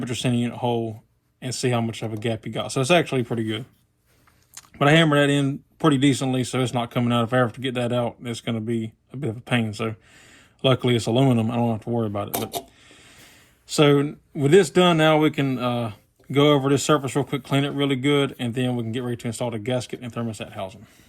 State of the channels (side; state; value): both; identical; correlation 1.00